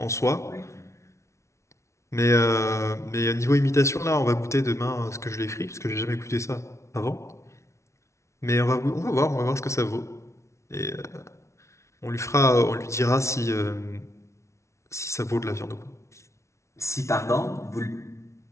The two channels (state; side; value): late; right; 0.13 ms